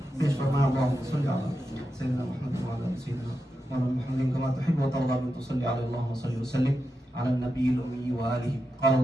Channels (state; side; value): normal; both; correlation 0.88